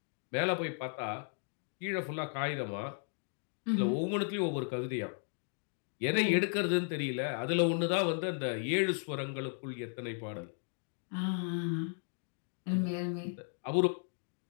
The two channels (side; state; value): right; silent; 54 dB below the other